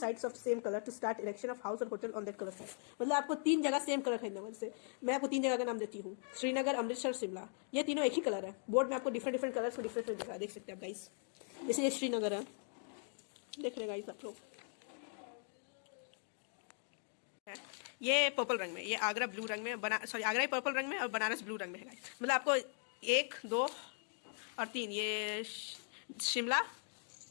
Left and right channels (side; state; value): right; silent; 51 dB below the other